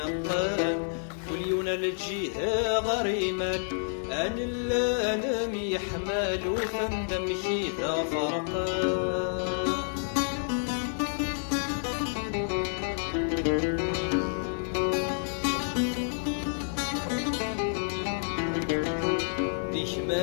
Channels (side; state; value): right; silent; digital silence